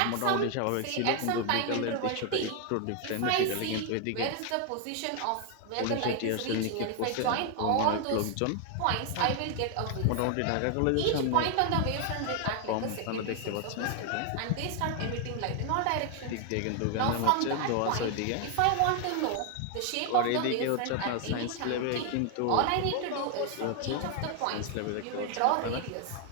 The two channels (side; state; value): both; different; correlation 0.00